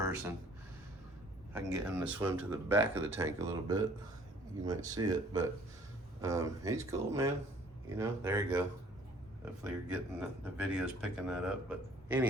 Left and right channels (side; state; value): both; normal; correlation 0.56